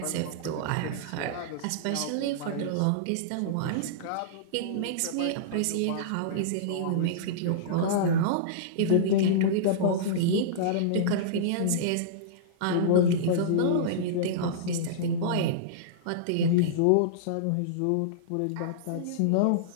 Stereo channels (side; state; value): both; different; correlation -0.03